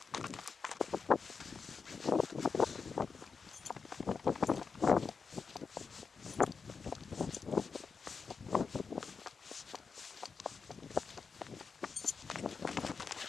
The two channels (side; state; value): right; quieter; 5.2 dB